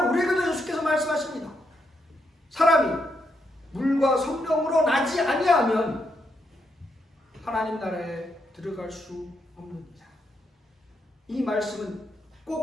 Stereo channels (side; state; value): both; normal; correlation 0.80